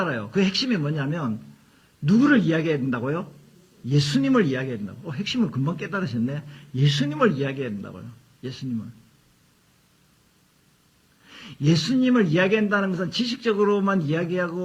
그 핵심이 뭐냐면 누구를 이야기해야 된다고요? 예수님을 이야기해야 된다고. 핵심을 금방 깨달으셨네. 예수님을 이야기해야 된다고요. 예수님을 이야기한다는 것은 지식적으로만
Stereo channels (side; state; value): both; identical; correlation 1.00